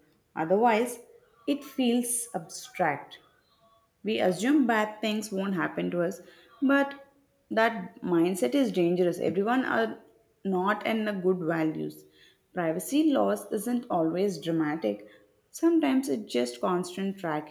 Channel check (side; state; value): both; identical; correlation 1.00